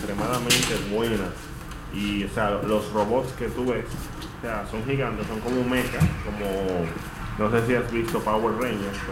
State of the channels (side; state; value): both; identical; correlation 1.00